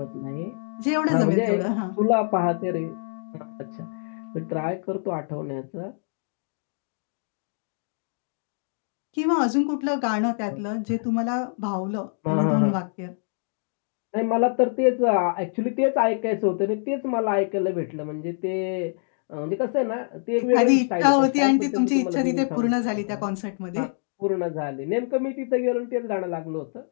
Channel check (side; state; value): right; silent; digital silence